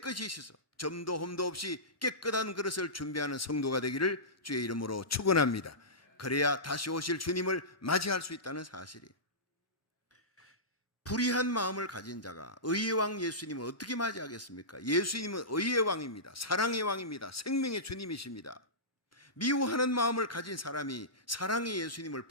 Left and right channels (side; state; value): both; normal; correlation -0.18